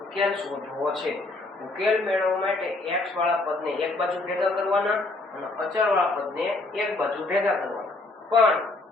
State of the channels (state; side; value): quieter; right; 3.1 dB